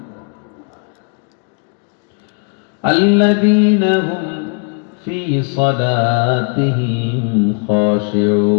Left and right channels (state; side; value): quieter; right; 39.6 dB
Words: الذين هم في صلاتهم